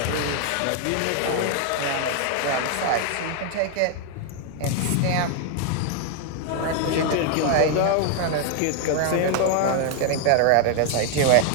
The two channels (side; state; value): both; different; correlation 0.00